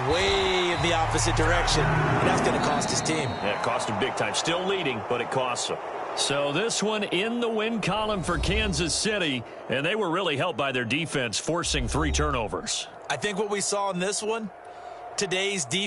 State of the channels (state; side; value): identical; both; correlation 1.00